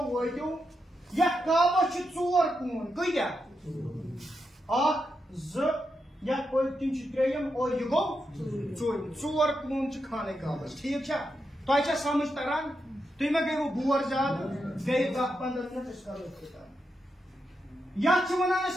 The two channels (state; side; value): normal; both; correlation 0.85